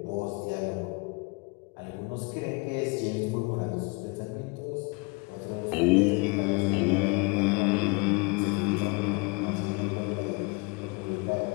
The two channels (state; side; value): quieter; right; 29.2 dB